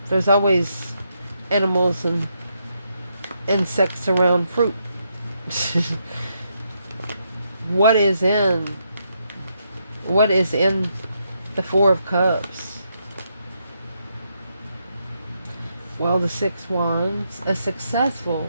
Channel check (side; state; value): both; inverted; correlation -0.79